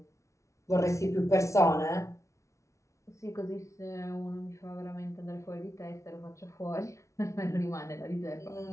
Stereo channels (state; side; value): late; right; 0.14 ms